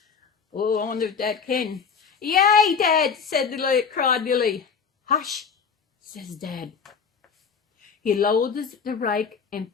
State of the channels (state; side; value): quieter; right; 6.1 dB